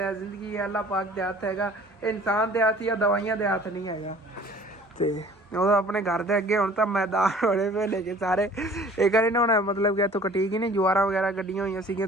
जिंदगी है, अल्लाह पाक दे हथ हैगा, इंसान दे हथ या दवाइयां दे हथ नहीं हैगा। तो ਉਹ ਆਪਣੇ ਘਰ ਦੇ ਅੱਗੇ ਹੁਣ ਤਾਂ ਮੈਦਾਨ ਹੋਣੇ ਪਏ ਨੇ ਕਿ ਸਾਰੇ ਇਹ ਕਰੇ ਨਾ, ਹੁਣ ਮਤਲਬ ਕਿ ਇੱਥੋਂ ਕਟੀ ਗਈ ਨੇ ਜਵਾਰਾਂ ਵਗੈਰਾ ਕੱਢੀਆਂ ਹੋਈਆਂ ਸੀਗੀਆਂ,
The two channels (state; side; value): normal; both; correlation 0.50